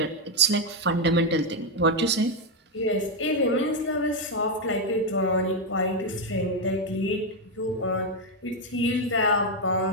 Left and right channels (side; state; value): both; normal; correlation 0.03